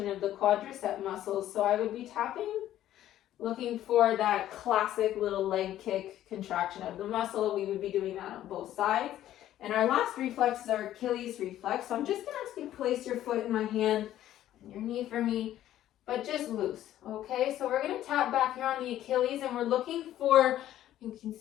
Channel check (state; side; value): quieter; right; 12.7 dB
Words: of the quadricep muscles. So I would be tapping, looking for that classic little leg kick contraction of the muscle. We would be doing that on both sides. And our last reflex is our Achilles reflex. So I'm just gonna ask you to place your foot in my hand and your knee for me, but just loose, okay? So we're gonna tap back here on the Achilles, and we're looking for, you can